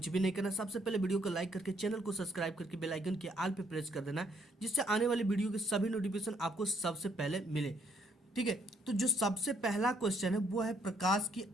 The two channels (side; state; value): both; normal; correlation 0.68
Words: भी नहीं करना। सबसे पहले वीडियो को लाइक करके चैनल को सब्सक्राइब करके बेल आइकन के ऑल पे प्रेस कर देना है, जिससे आने वाली वीडियो के सभी नोटिफिकेशन आपको सबसे पहले मिले। ठीक है, तो जो सबसे पहला क्वेश्चन है वो है प्रकाश की